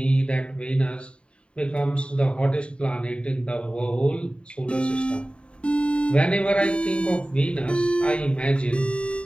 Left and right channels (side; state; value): right; late; 0.056 ms